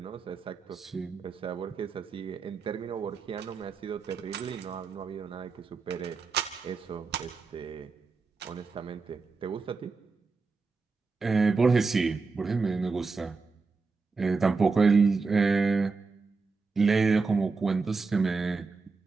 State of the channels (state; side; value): quieter; left; 4.4 dB